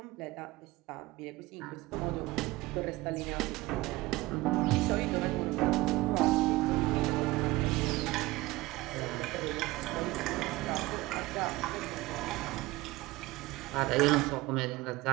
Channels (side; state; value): left; quieter; 19.9 dB